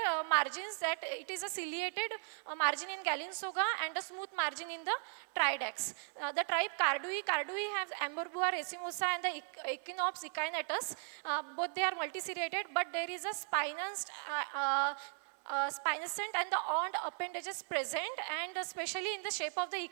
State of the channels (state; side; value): silent; left; 53 dB below the other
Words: margins, that it is a ciliated margin in Gallingsoga and a smooth margin in the Tridax. The tribe Cardui have Amberbua racemosa and the Echinops echinatus. Both they are multiseriated, but there is a spinosant and the horned appendages present, and especially in the shape of the